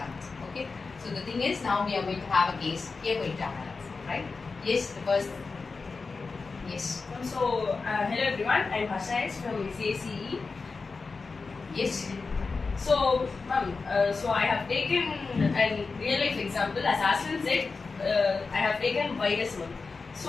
Okay. So the thing is, now we are going to have a case. We are going to analyze, right? Yes, the first. Yes. So, hello everyone, I'm Harsha from CACE. Yes. So, ma'am, so I have taken a real life example. As Aslan said, I have taken virus one.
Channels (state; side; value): quieter; right; 4.3 dB